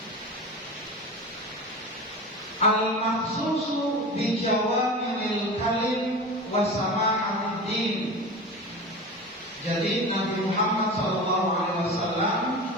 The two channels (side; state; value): both; normal; correlation 0.30